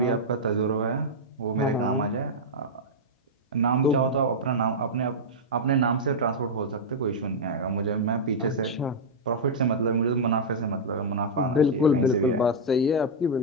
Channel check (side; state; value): both; normal; correlation -0.05